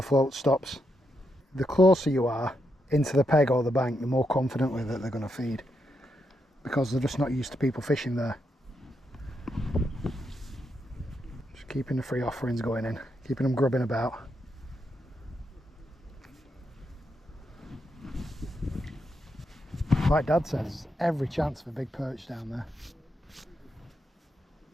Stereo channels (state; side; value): normal; both; correlation 0.82